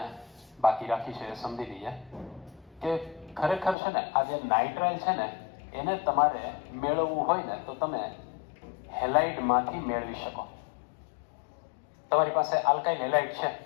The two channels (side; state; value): right; drops out; at 3.8 s